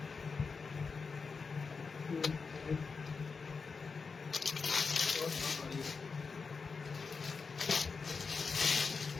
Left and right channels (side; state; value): right; quieter; 4.9 dB